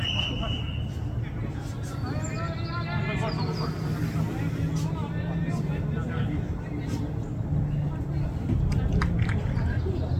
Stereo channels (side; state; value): both; identical; correlation 1.00